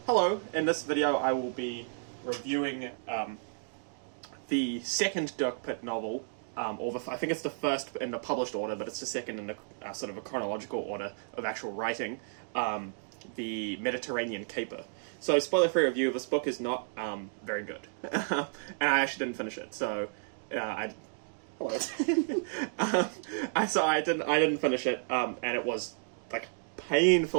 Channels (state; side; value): silent; left; digital silence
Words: Hello, in this video I will be reviewing the second Dirk Pitt novel, I think it's the first in the published order, but it's the second in the sort of a chronological order of actual writing, the Mediterranean Caper. So, spoiler-free review, this book is not very good, and I actually didn't finish it, so hello. I didn't finish it, and it was like